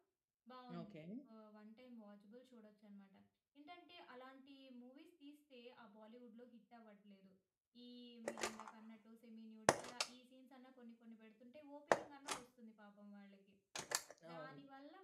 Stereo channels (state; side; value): identical; both; correlation 1.00